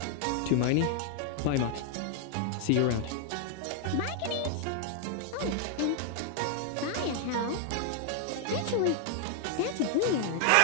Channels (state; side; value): different; both; correlation 0.00